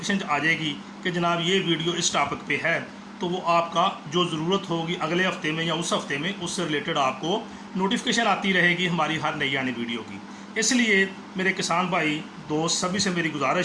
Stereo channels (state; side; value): identical; both; correlation 1.00